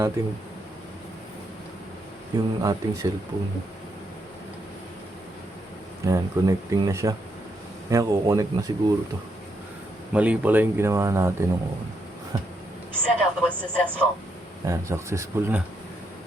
yung ating cellphone. Ayan, connecting na siya. Ayan, kukonect na siguro to. Mali pala yung ginawa natin nung una. Setup was successful. Ayan, successful na.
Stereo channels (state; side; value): normal; both; correlation 0.78